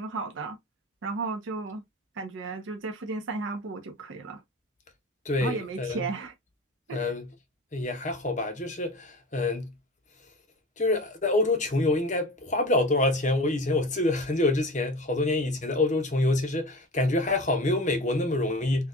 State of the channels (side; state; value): both; normal; correlation 0.34